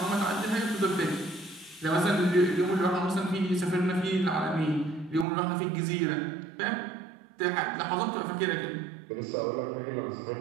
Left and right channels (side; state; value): left; drops out; at 5.2 s